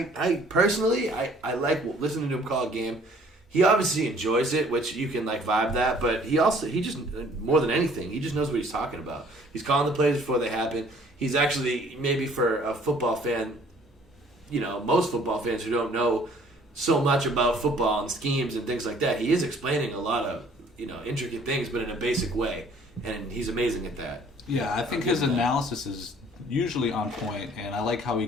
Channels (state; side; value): normal; both; correlation 0.56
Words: I personally, I like listening to him call a game. He obviously enjoys it, which you can vibe that, but he just, more than anything, he just knows what he's talking about. He's calling the plays before they happen. He's actually, maybe for a football fan, most football fans who don't know so much about football and schemes and things like that. He is explaining a lot of intricate things, but in a basic way, and he's amazing at that. Yeah, I think his analysis is usually on point, and I like how he